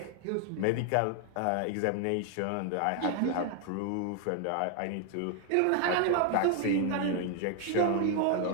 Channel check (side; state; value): both; different; correlation 0.00